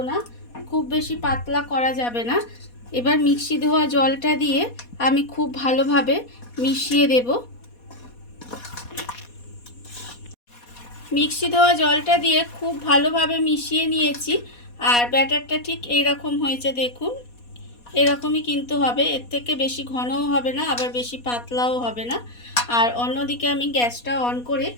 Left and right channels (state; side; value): late; right; 4.2 ms